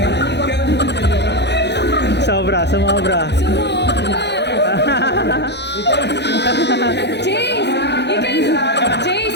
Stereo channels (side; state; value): right; late; 0.50 ms